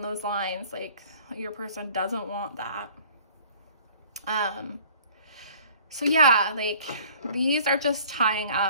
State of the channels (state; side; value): inverted; both; correlation -0.51